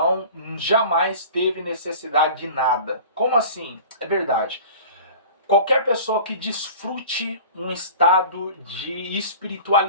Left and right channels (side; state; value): both; inverted; correlation -0.40